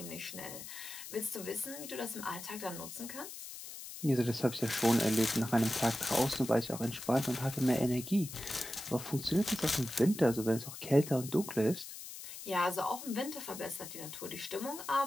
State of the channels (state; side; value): noise; left; hiss, 11 dB below the sound